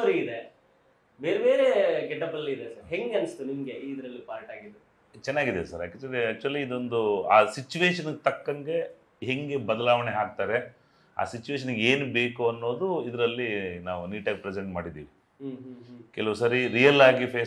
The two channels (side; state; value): both; identical; correlation 1.00